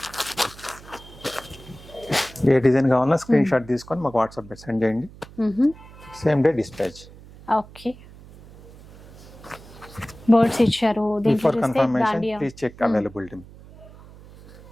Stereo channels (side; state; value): right; noise; hum, 20 dB below the sound